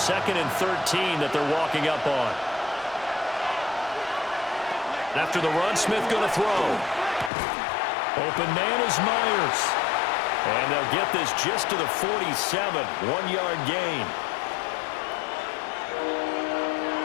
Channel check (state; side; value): drops out; right; at 7.3 s